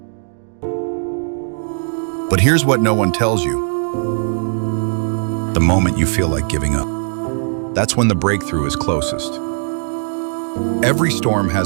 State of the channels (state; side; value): silent; left; digital silence